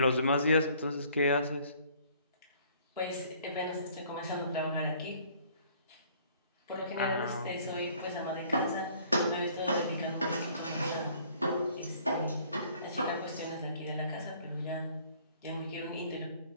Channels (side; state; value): both; inverted; correlation -0.57